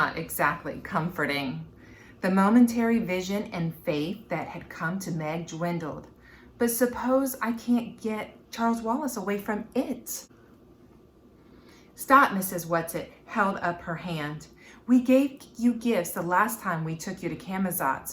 exactly comforting. The momentary vision and faith that had come to Meg dwindled. But suppose I can't get Charles Wallace away from it? Stop, Mrs. Whatsit held up her hand. We gave you gifts the last time we took you to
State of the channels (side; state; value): both; identical; correlation 1.00